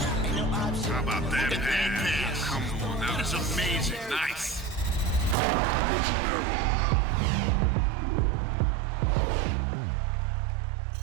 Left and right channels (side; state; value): left; drops out; at 5.4 s